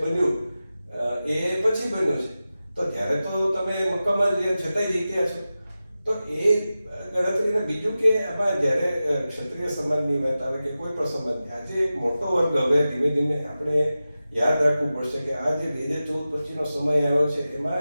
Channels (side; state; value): both; inverted; correlation -0.94